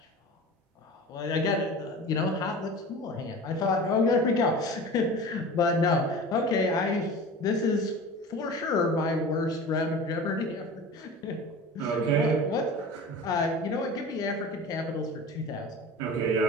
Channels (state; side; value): normal; both; correlation 0.36